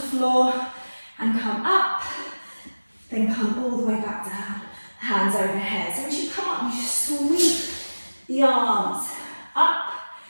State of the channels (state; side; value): inverted; both; correlation -1.00